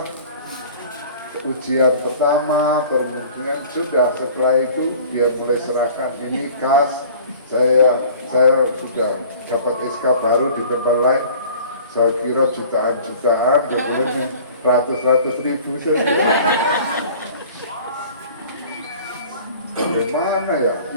ujian pertama, kemudian sudah setelah itu dia mulai serahkan ini kas, saya sudah dapat SK baru di tempat lain. Saya kira jutaan-jutaan, kemudian ratus-ratus ribu saja. Bagaimana ya?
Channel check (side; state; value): both; inverted; correlation -0.47